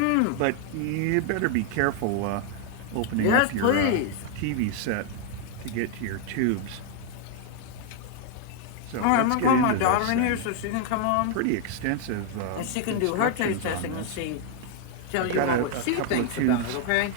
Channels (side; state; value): both; different; correlation 0.01